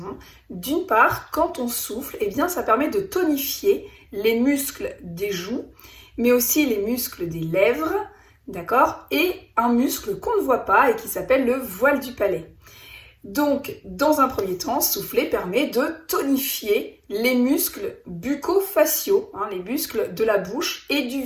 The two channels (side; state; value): both; identical; correlation 1.00